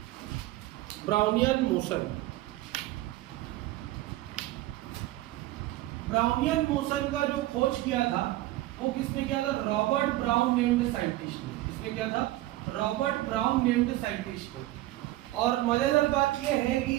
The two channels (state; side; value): quieter; left; 16.7 dB